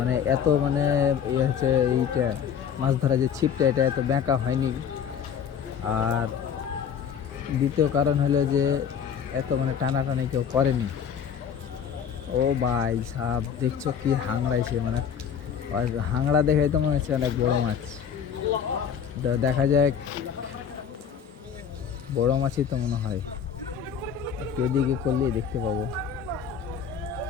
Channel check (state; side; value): quieter; right; 7.7 dB